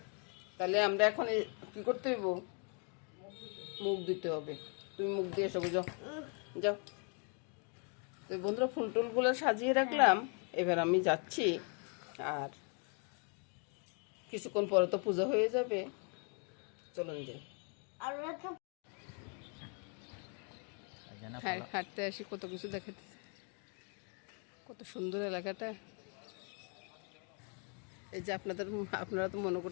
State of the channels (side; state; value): right; quieter; 38.9 dB